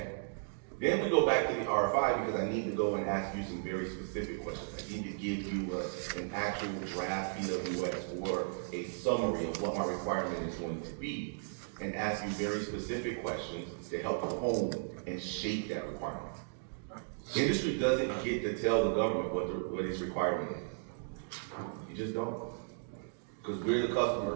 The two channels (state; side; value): silent; left; digital silence